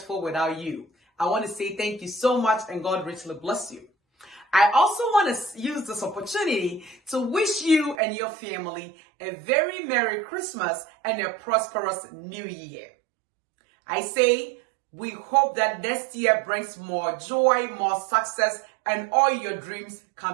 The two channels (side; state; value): left; drops out; at 8.0 s